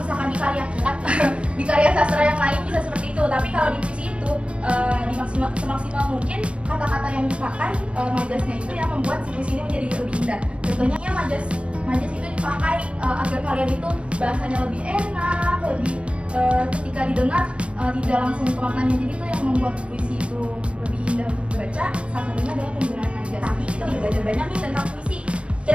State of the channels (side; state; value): left; late; 0.059 ms